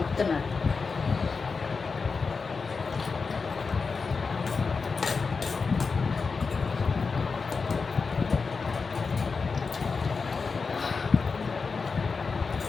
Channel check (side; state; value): right; quieter; 4.8 dB